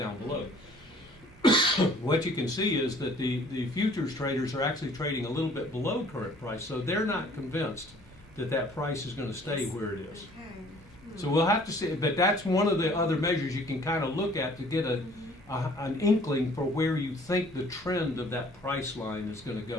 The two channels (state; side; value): normal; both; correlation 0.55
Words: below. What you can see is that the futures traders are actually trading a little bit below current price, so they're not convinced that price is going to stay where it is. Okay. So we'll have to see, but that's one of the other measures you can kind of look at to get an inkling for where you think the trend of that price line is going to